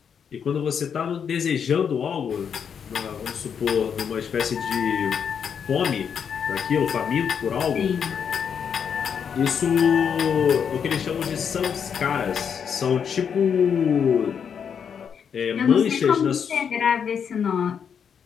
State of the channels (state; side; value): quieter; right; 7.3 dB